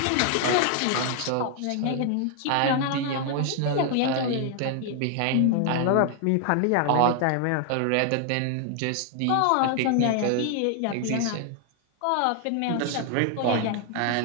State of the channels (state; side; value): different; both; correlation 0.00